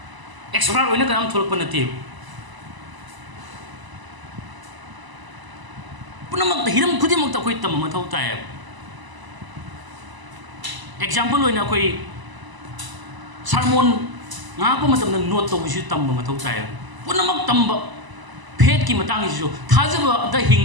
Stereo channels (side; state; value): left; late; 1.0 ms